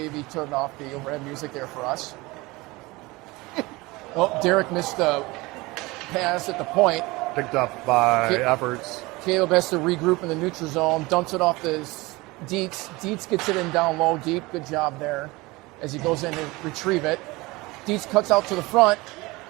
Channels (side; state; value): left; quieter; 22.4 dB